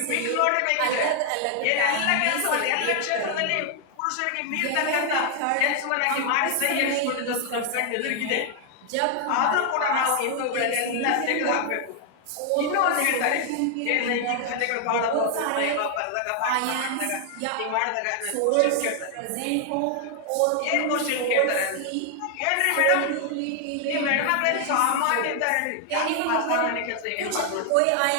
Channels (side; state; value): both; different; correlation 0.00